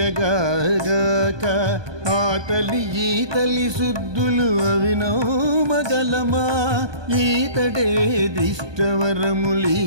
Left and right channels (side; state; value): left; late; 1.2 ms